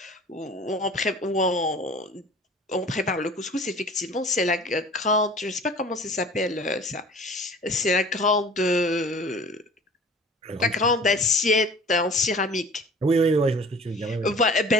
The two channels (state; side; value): normal; both; correlation 0.45